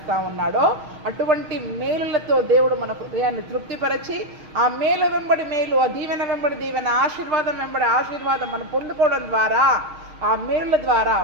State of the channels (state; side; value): late; left; 6.4 ms